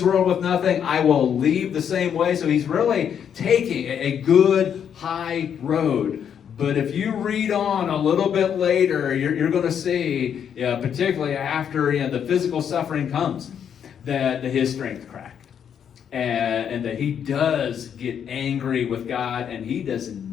world with nothing. I will leave the same way. So he's really taking a good high road. But if you read on a little bit later, you're going to see, particularly after the physical suffering comes, that his strength cracked. And that he does get angry with God, and he does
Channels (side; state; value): right; quieter; 8.3 dB